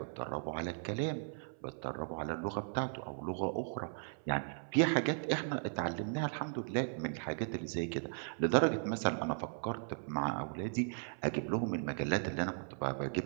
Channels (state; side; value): silent; left; 53 dB below the other